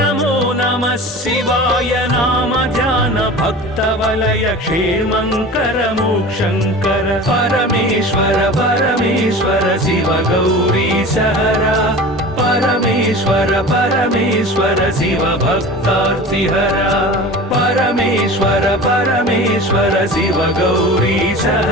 नमः शिवाय नाम ध्यान भक्त वलय क्षेमंकर मोक्षंकर परमेश्वर परमेश्वर शिव गौरीश हरा परमेश्वर परमेश्वर शिव भक्तार्तिहरा परमेश्वर परमेश्वर शिव गौरीश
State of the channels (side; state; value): both; normal; correlation 0.36